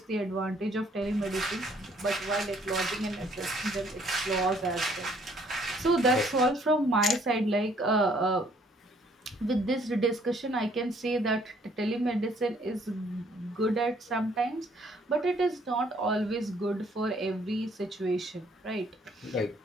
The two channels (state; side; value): normal; both; correlation 0.63